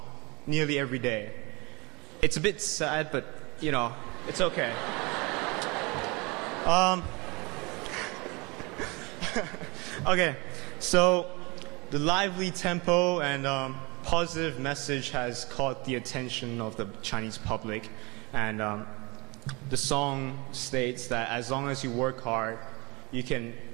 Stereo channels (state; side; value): quieter; left; 26.5 dB